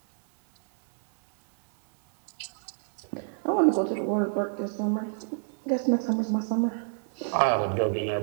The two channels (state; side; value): silent; left; digital silence